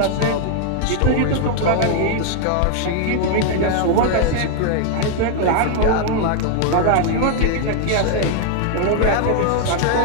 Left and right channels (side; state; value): both; different; correlation 0.00